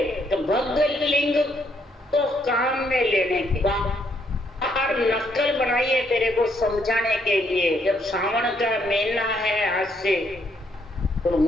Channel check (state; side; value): normal; both; correlation 0.72